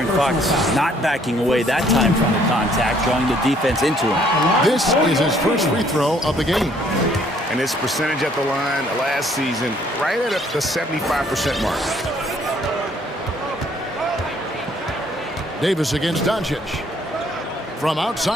Fox not backing away that time from the contact, drawing the defense into him. This is his first free throw of the game. And his percentage at the line last season, right at the 75% mark. Davis against Doncic. From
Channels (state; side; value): normal; both; correlation 0.63